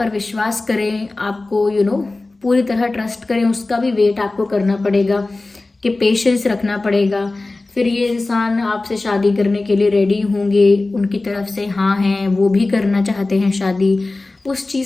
विश्वास करें, आपको पूरी तरह ट्रस्ट करें, उसका भी वेट आपको करना पड़ेगा, कि पेशेंस रखना पड़ेगा। फिर ये इंसान आपसे शादी करने के लिए रेडी होंगे, उनकी तरफ से हाँ हैं, वो भी करना चाहते हैं शादी, उस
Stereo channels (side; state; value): right; quieter; 3.2 dB